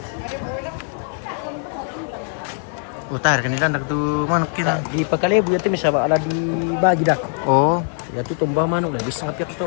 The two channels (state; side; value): silent; right; 59 dB below the other